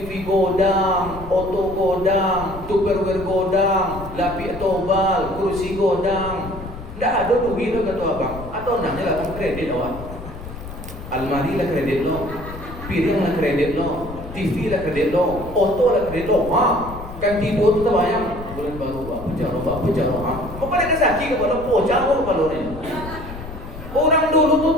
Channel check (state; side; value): noise; left; rumble, 12 dB below the sound